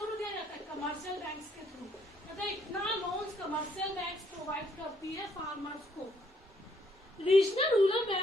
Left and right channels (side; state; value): both; normal; correlation 0.69